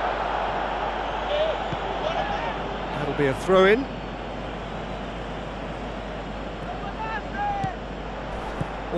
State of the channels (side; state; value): both; identical; correlation 1.00